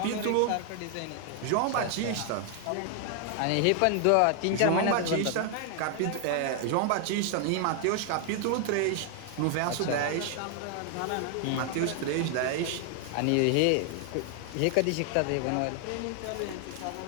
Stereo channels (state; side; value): different; both; correlation 0.00